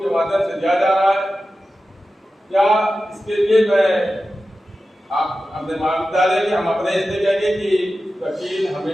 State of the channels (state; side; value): normal; both; correlation 0.93